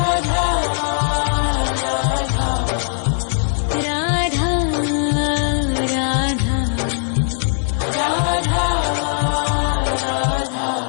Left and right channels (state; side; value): silent; right; digital silence